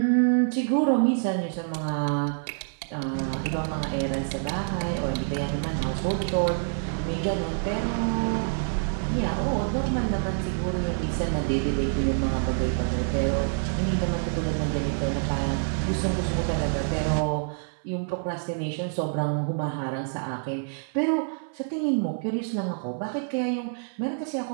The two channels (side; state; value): left; silent; 59 dB below the other